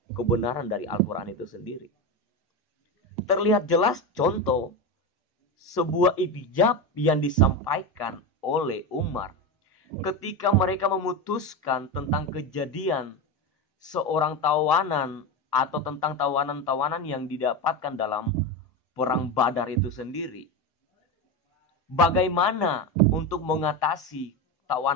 kebenaran dari Al-Quran itu sendiri. Terlihat jelas contoh sebuah iktijab yang disampaikan oleh Umar ketika mereka memutuskan tentang kejadian seorang tawanan atau tentang tawanan-tawanan yang didapatkan dalam perang Badar itu sendiri. Bagaimana untuk mengatasi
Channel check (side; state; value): both; normal; correlation 0.18